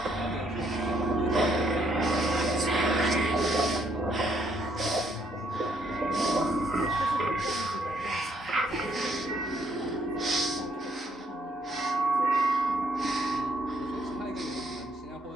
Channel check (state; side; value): normal; both; correlation 0.70